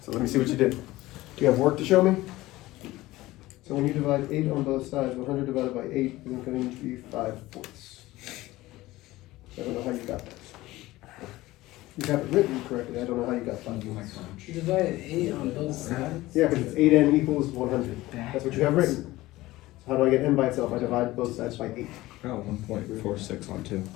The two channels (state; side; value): quieter; right; 18.0 dB